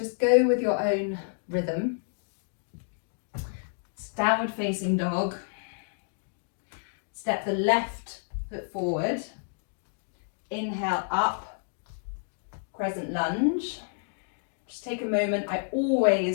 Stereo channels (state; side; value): silent; right; digital silence